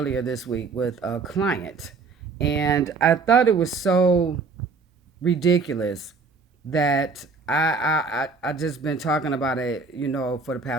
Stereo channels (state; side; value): quieter; left; 4.4 dB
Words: this week with a client. And I thought it was so ridiculous that I just been talking about it, for the